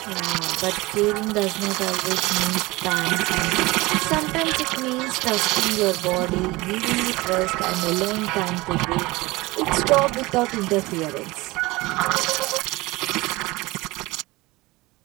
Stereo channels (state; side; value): quieter; left; 21.6 dB